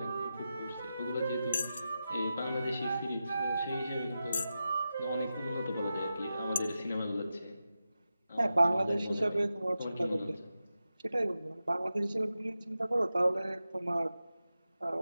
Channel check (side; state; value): both; inverted; correlation -0.91